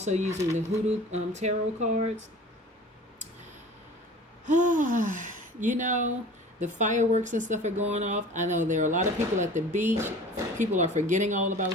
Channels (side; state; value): both; normal; correlation 0.43